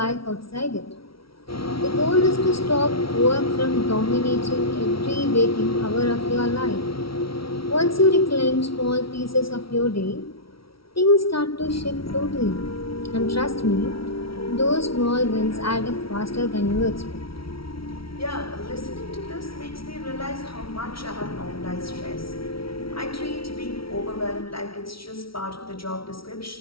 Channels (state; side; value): late; right; 0.75 ms